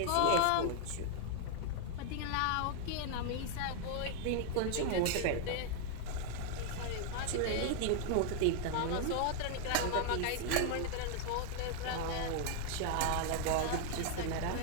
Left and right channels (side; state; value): both; different; correlation 0.00